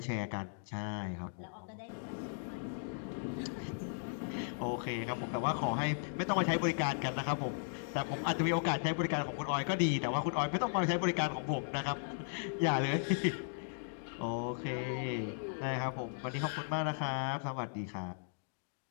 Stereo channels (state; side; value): silent; right; digital silence